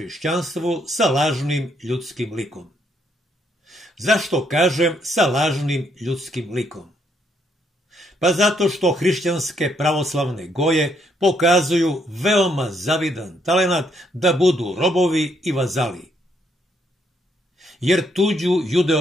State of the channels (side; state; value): both; normal; correlation 0.72